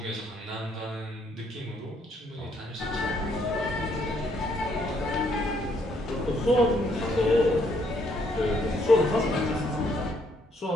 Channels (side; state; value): both; normal; correlation 0.70